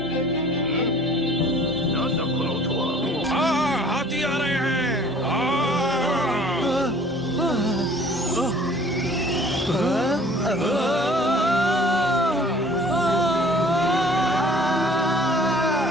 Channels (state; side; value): normal; both; correlation 0.51